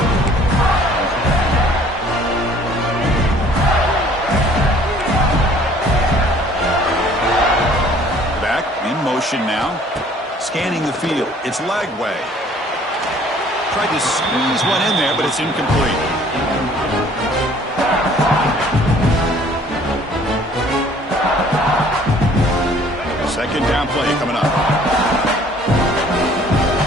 Back in motion now. Scanning the field. It's Lagway. Tried to squeeze one in there, but it's incomplete. Second down play coming up.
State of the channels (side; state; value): both; normal; correlation 0.56